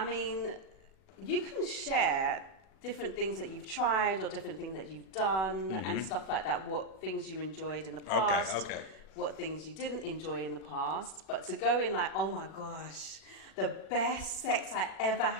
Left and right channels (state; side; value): late; right; 39 ms